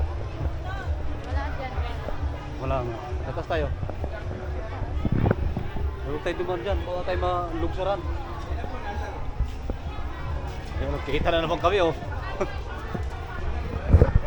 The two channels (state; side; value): identical; both; correlation 1.00